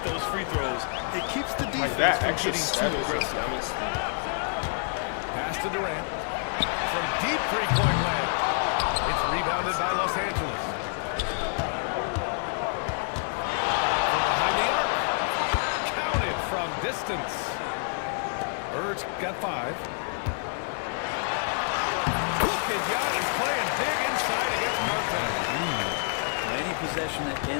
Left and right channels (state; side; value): silent; right; 60 dB below the other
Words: those free throws. It keeps the defense Like that from extra getting step too is aggressive. Pass to Durant. From deep three-point land. It's rebounded by Los Angeles. From behind the arc. Counted from distance. Bird's got 5. Look at Giannis playing big inside against Martin. Any possession that